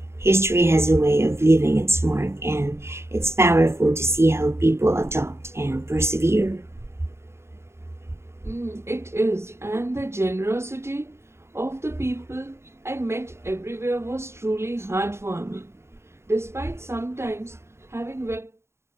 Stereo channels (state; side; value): late; left; 0.13 ms